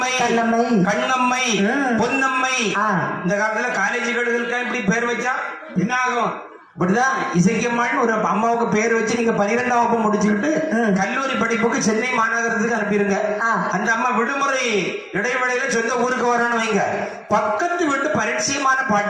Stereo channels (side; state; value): both; identical; correlation 1.00